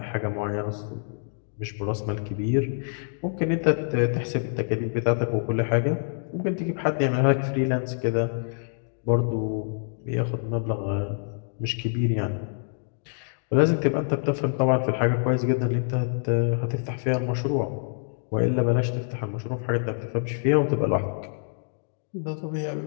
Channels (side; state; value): right; silent; digital silence